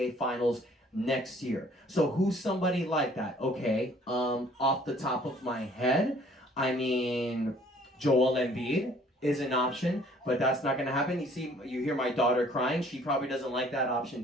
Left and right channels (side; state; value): both; normal; correlation 0.57